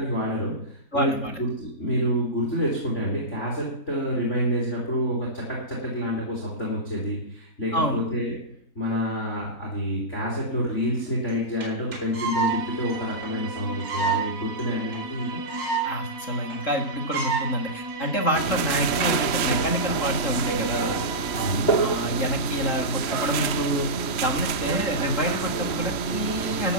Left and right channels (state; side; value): late; right; 3.1 ms